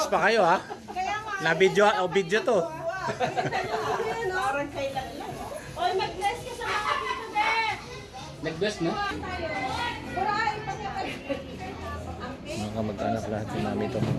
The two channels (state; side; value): identical; both; correlation 1.00